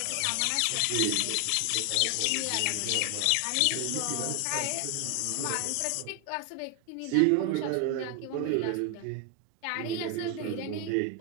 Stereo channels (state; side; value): different; both; correlation 0.01